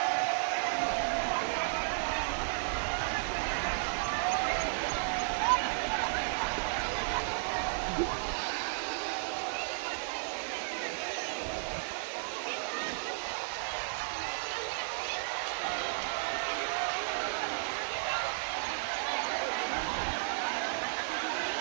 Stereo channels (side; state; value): left; silent; 55 dB below the other